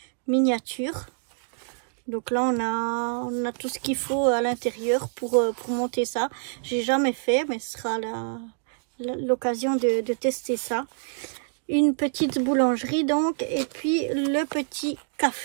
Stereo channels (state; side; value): silent; left; digital silence